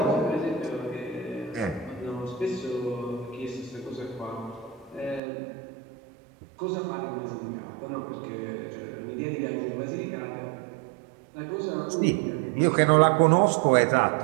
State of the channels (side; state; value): left; drops out; at 5.2 s